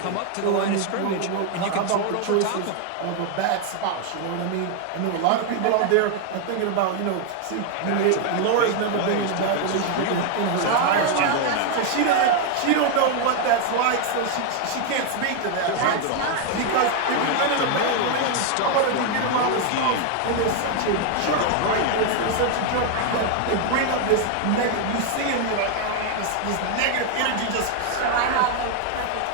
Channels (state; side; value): different; both; correlation 0.01